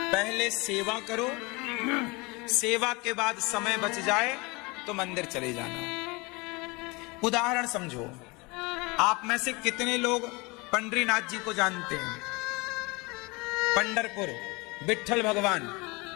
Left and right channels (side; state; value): right; quieter; 26.2 dB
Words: पहले सेवा करो, सेवा के बाद समय बच जाए तो मंदिर चले जाना। उदाहरण समझो, आप में से कितने लोग पंडरीनाथ जी को जानते हैं? पंढरपुर विठल भगवान,